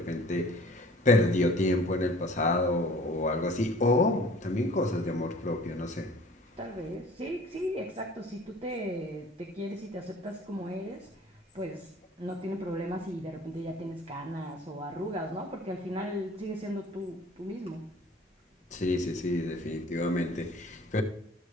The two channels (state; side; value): normal; both; correlation 0.49